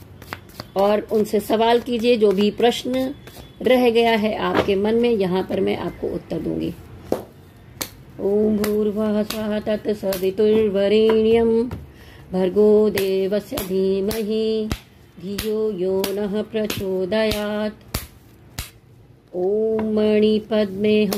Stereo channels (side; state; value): both; identical; correlation 1.00